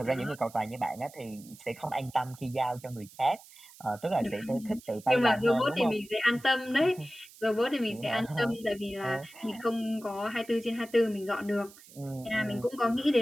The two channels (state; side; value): noise; right; hiss, 21 dB below the sound